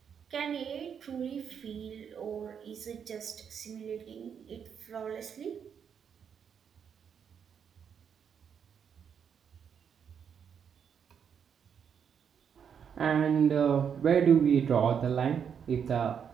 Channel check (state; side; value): quieter; left; 7.5 dB